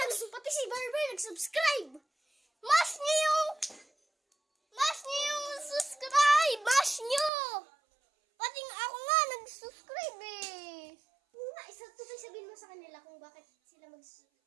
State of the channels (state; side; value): drops out; left; at 7.3 s